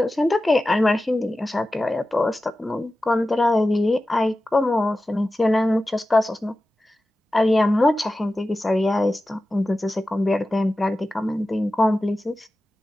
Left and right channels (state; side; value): normal; both; correlation 0.94